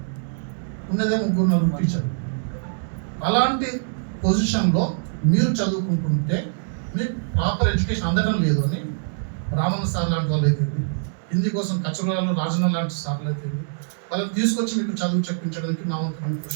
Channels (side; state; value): left; silent; digital silence